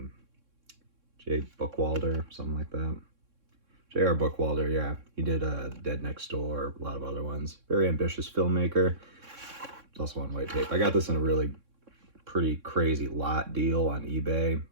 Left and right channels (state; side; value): late; left; 3.6 ms